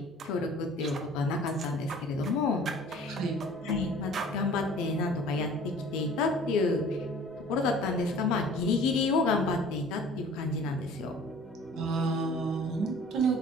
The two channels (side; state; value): both; normal; correlation 0.48